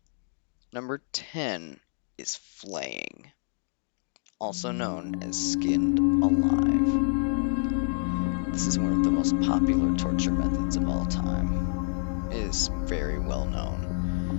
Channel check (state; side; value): silent; right; digital silence